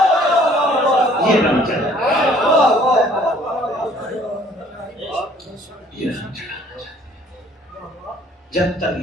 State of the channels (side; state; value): both; normal; correlation 0.58